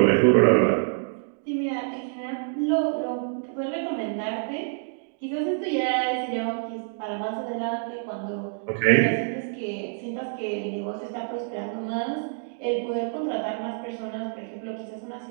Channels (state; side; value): silent; left; digital silence